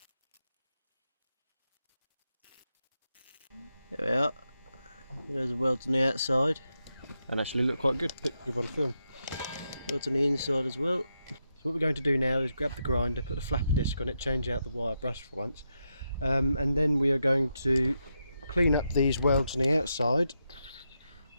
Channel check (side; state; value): both; inverted; correlation -0.84